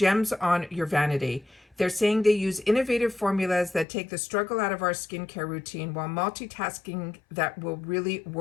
on your vanity. They're saying they use innovative formulas that take the struggle out of our skincare routine while multitasking that will really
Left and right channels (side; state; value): right; drops out; at 3.9 s